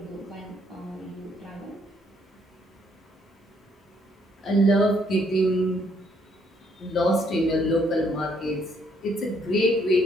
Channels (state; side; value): normal; both; correlation 0.69